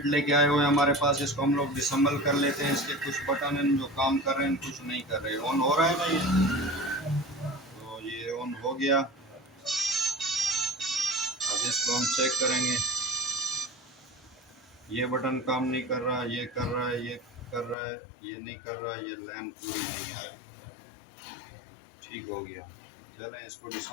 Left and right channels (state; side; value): drops out; right; at 17.8 s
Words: लेके आए हुए हैं हमारे पास। इसको हम लोग डिसम्बल कर लेते हैं। इसके कुछ बटन हैं जो काम कर रहे हैं, कुछ नहीं कर रहे। ऑन हो रहा है ना ये, तो ये ऑन हो गया। अब इसको हम चेक करेंगे। ये बटन काम नहीं कर रहा, ये कर रहा है, ये कर रहा है, ये नहीं कर रहा, ये लाइन पूरी नहीं आ रहा। ठीक हो गया। चलें इसको